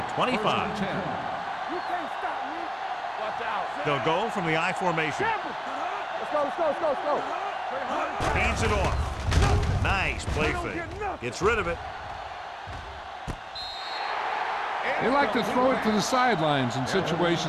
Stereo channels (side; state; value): both; identical; correlation 1.00